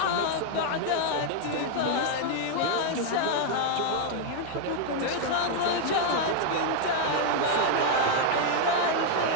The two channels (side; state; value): both; different; correlation 0.00